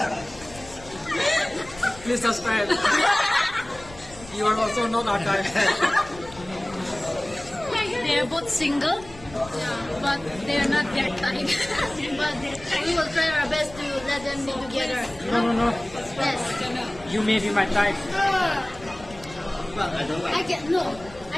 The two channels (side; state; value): left; noise; rumble, 19 dB below the sound